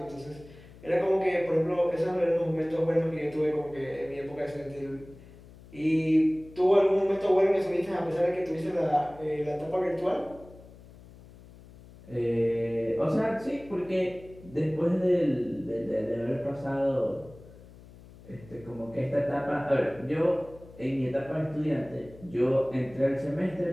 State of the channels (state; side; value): noise; left; hum, 21 dB below the sound